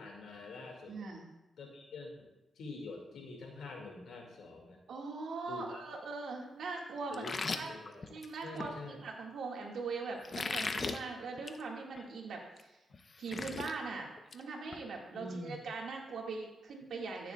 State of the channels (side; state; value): both; normal; correlation 0.78